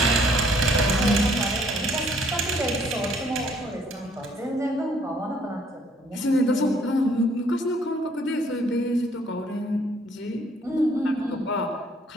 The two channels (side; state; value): both; normal; correlation 0.63